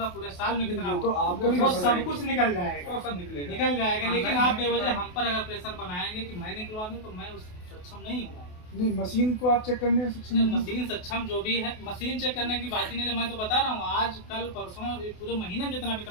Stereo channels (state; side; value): late; right; 28 ms